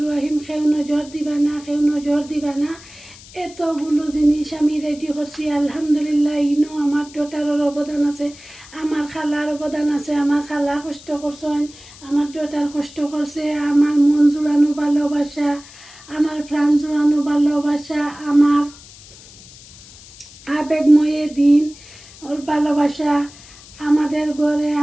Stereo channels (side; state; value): left; noise; hiss, 20 dB below the sound